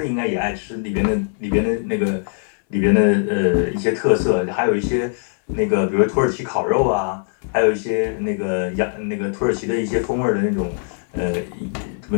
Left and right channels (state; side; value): silent; right; digital silence